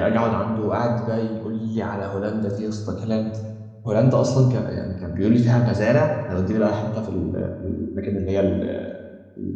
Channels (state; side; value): identical; both; correlation 1.00